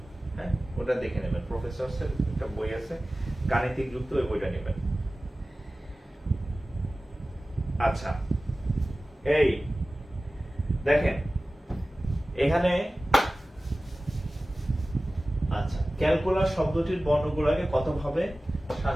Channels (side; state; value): both; normal; correlation 0.96